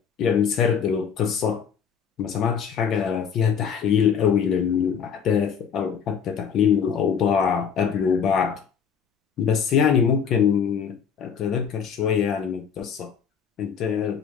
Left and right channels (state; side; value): quieter; right; 7.2 dB